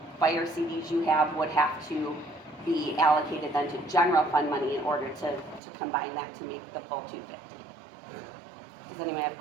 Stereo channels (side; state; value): left; drops out; at 5.6 s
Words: fire CDs you have would have to be allocated then to general fund money in order to combine that to make the full 250. Does anyone have